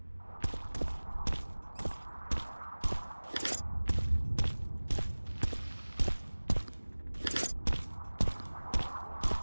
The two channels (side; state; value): both; inverted; correlation -1.00